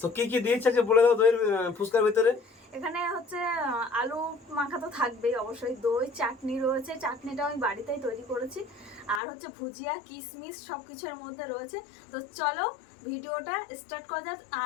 তো কি কি দিয়েছে যে বলে দাও দইয়ের ফুচকার ভিতরে। এখানে হচ্ছে আলু মাখা তো থাকবেই অবশ্যই, দই, চাটনি রয়েছে, চাটনিটা আমি বাড়িতেই তৈরি করেছি, আর হচ্ছে ভুজিয়া, কিশমিশ সব কিছুর মধ্যে রয়েছে। তো চলো ভিডিওটা স্টার্ট করা যাক।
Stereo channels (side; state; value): right; drops out; at 9.2 s